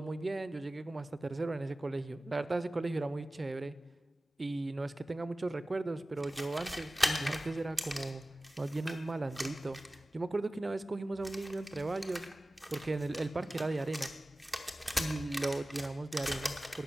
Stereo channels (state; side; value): normal; both; correlation 0.97